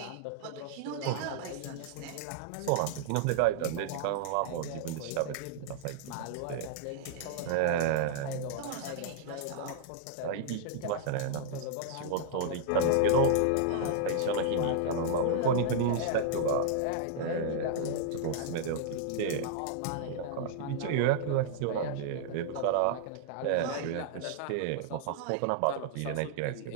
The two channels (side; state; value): both; different; correlation -0.01